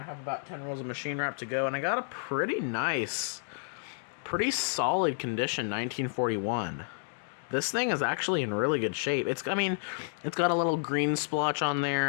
have about 10 rolls of machine wrap to go, and I got a pretty nice, pretty solid condition 1941. This thing is actually in really good shape. It's got a little green splotch on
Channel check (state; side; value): silent; right; digital silence